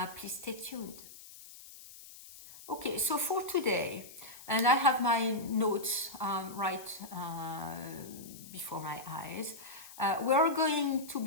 please stay tuned. Okay, so for today, and I have my notes right before my eyes, we're going to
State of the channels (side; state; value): left; noise; hiss, 17 dB below the sound